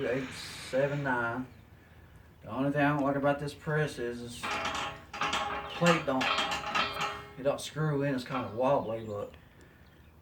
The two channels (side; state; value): both; identical; correlation 1.00